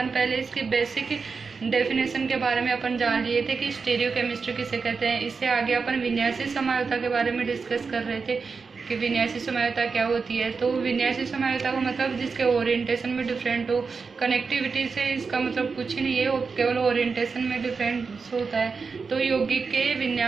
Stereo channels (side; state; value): left; quieter; 4.9 dB